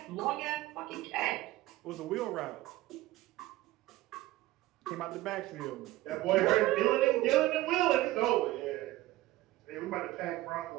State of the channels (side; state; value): left; quieter; 17.3 dB